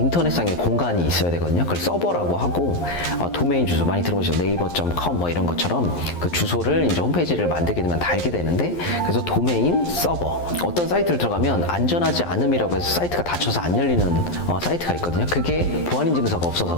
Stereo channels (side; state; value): right; late; 11 ms